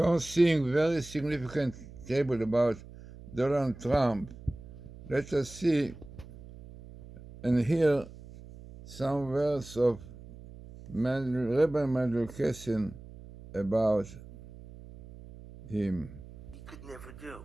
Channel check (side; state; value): right; noise; hum, 17 dB below the sound